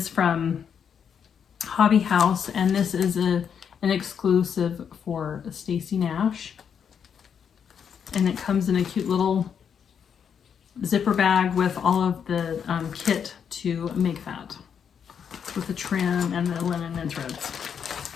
from Hobby House, and this is an exclusive for Stacy Nash. And it comes in a cute little zipper bag with all of the kit to make that, with the trim and the linen and threads.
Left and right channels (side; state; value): right; quieter; 7.5 dB